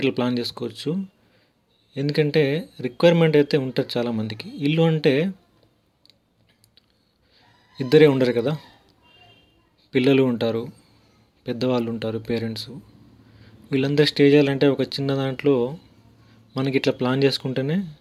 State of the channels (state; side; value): identical; both; correlation 1.00